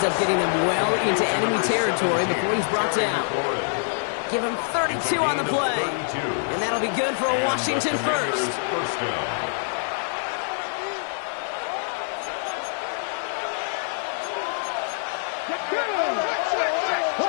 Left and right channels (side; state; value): right; silent; 56 dB below the other